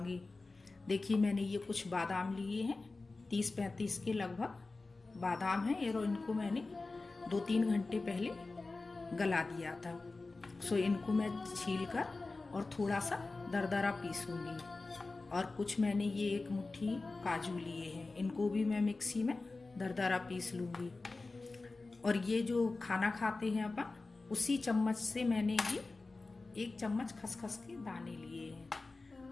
देखिए मैंने ये कुछ बादाम लिए हैं, 30-35 के लगभग बादाम हैं और इनको मैंने 2-3 घंटे पहले गला दिया था। सो इनको मैं छील कर और थोड़ा सा दरदरा पीसूंगी। और कुछ मैंने ये एक मुट्ठी काजू लिए हैं, इनको भी मैं मिक्सी में दरदरा पीस लूँगी। और ये जो खाना खाते हैं अपन, उसी चम्मच से मैंने ये 1 चम्मच खसखस के दाने लिए हैं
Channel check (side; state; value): right; quieter; 3.5 dB